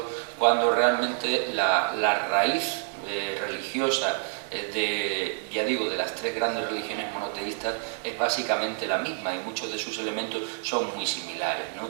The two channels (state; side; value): silent; left; digital silence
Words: cuando realmente la raíz religiosa de las tres grandes religiones monoteístas es básicamente la misma y muchos de sus elementos son muy similares, ¿no?